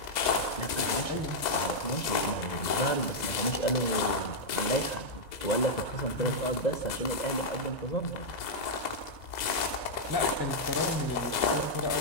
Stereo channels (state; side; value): late; right; 2.0 ms